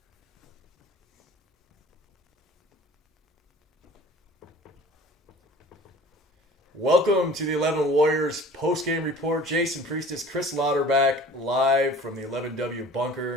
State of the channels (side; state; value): both; normal; correlation 0.45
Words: Welcome to the 11 Warriors post-game report. Jason Priestis, Chris Lauterbach, live from the 11W